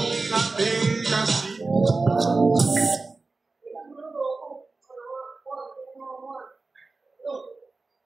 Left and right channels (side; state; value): left; quieter; 3.7 dB